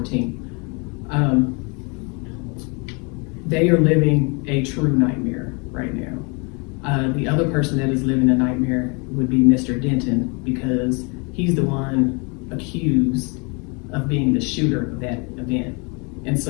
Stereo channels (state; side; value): quieter; right; 32.3 dB